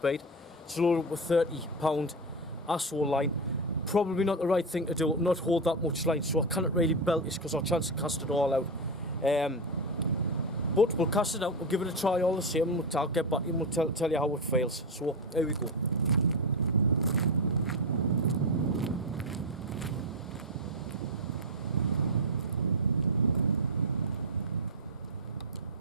It's loaded up with £30 ASO line. Probably not the right thing to do, not hold that much line, so I cannot really belt this because I'll chance to cast it all out. But we'll cast it out, we'll give it a try all the same, and I'll get back and we'll tell you how it feels. So, here we go.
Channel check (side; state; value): both; normal; correlation 0.11